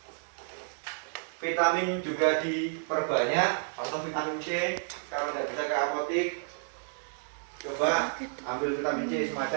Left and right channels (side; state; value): left; silent; digital silence